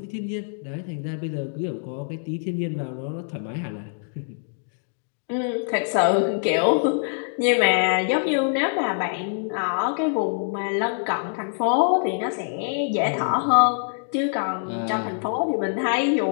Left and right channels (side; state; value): right; silent; digital silence